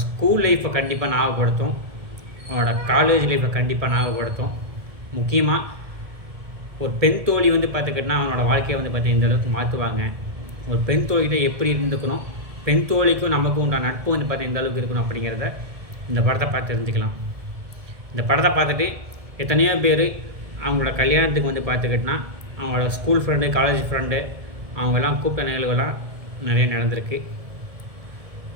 ஸ்கூல் லைஃப்பை கண்டிப்பாக ஞாபகப்படுத்தும், அவனோட காலேஜ் லைஃப்பை கண்டிப்பாக ஞாபகப்படுத்தும். முக்கியமாக ஒரு பெண் தோழி பார்த்துக்கிட்டனா அவனோட வாழ்க்கையை பார்த்தீங்கன்னா இந்த அளவுக்கு மாற்றுவாங்க. ஒரு பெண் தோழிகிட்ட எப்படி இருந்துக்கணும், பெண் தோழிக்கும் நமக்கும் உண்டான நட்பு பார்த்தீங்கன்னா இந்த அளவுக்கு இருக்கணும் அப்படிங்கிறத இந்த படத்தை பார்த்து தெரிஞ்சுக்கலாம். இந்த படத்தை பார்த்துட்டு எத்தனையோ பேர் அவங்களோட கல்யாணத்துக்கு பார்த்துக்கிட்டனா அவங்களோட ஸ்கூல் ஃப்ரெண்டு, காலேஜ் ஃப்ரெண்டு அவங்கெல்லாம் கூப்பிட்ட நிகழ்வுகள்லாம் நிறைய நடந்திருக்கு.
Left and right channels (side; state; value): left; late; 1.7 ms